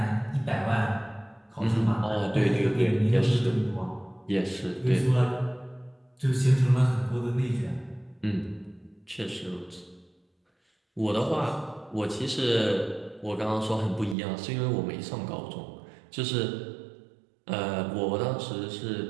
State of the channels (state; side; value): drops out; left; at 14.2 s